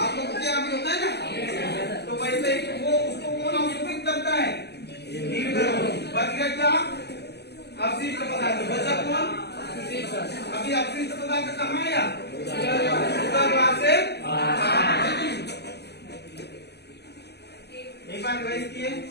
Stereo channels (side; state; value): right; late; 0.49 ms